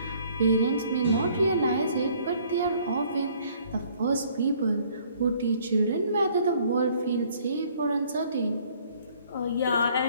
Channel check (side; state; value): both; inverted; correlation -0.60